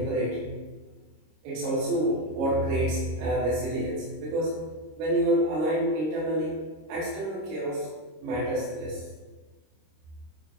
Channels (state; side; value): late; left; 26 ms